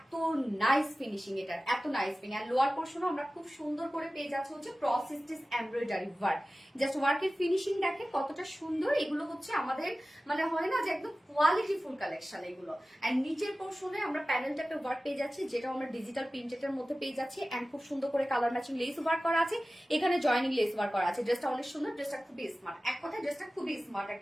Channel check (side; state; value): both; normal; correlation 0.96